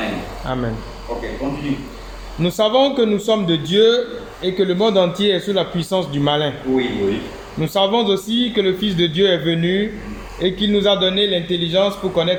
Amen. Ok, continue. Nous savons que nous sommes de Dieu et que le monde entier est sous la puissance du malin. Oui, oui. Nous savons aussi que le Fils de Dieu est venu et qu'il nous a donné l'intelligence pour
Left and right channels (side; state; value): both; identical; correlation 1.00